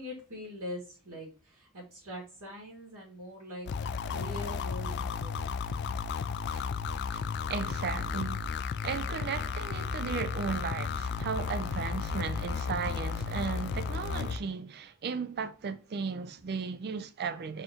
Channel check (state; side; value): normal; both; correlation 0.36